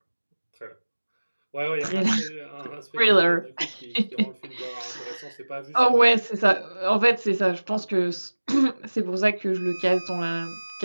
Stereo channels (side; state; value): both; inverted; correlation -1.00